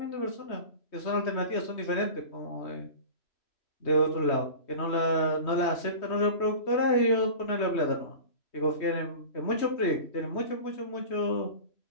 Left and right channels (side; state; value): right; late; 3.2 ms